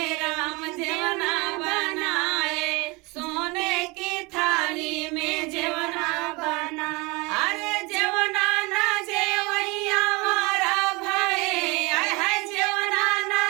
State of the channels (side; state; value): left; quieter; 26.1 dB